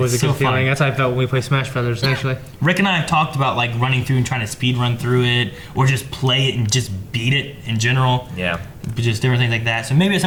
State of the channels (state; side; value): identical; both; correlation 1.00